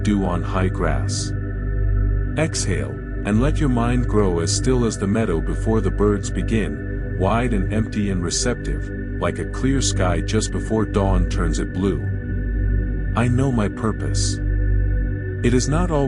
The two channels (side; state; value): both; identical; correlation 1.00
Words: dew on high grass. Exhale, and let your mind grow as still as the meadow before the birds begin, wide and empty and receptive, like a clear sky just before dawn turns it blue. I know my purpose. It is not